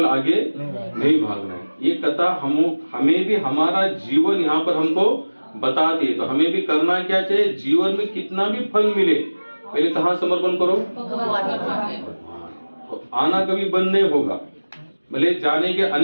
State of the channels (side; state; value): both; inverted; correlation -1.00